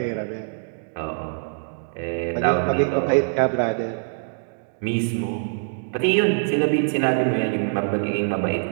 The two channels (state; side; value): silent; left; 63 dB below the other